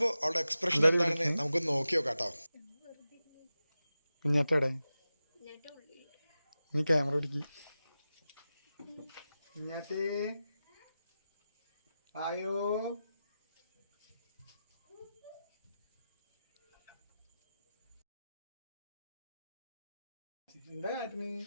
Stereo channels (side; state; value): both; inverted; correlation -0.93